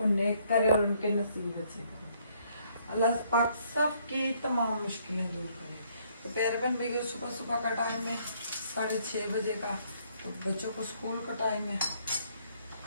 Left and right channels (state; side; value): inverted; both; correlation -0.67